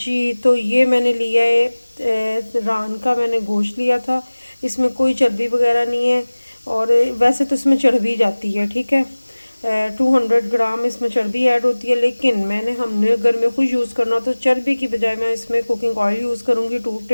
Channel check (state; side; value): inverted; both; correlation -1.00